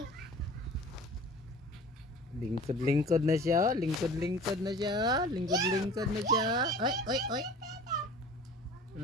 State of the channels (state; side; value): normal; both; correlation 0.43